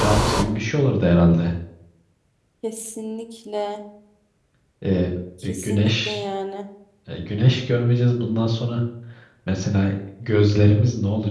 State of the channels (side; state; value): both; identical; correlation 1.00